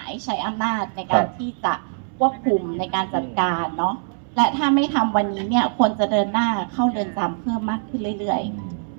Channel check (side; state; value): left; silent; 64 dB below the other